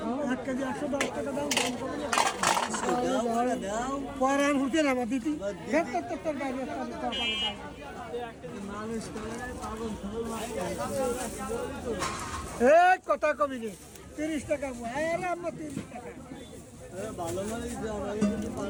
1 কেজি 110 টাকা দাম। পরে আর হুঁকে না দিতি। তোর বাইরে কথা কবি রে 30 টাকা পোয়া। আরে আমরা 30 টাকা।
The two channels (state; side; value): identical; both; correlation 1.00